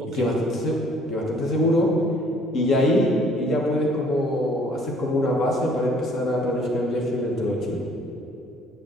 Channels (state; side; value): normal; both; correlation 0.58